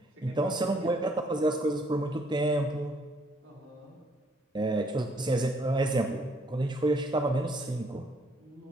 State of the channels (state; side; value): normal; both; correlation 0.66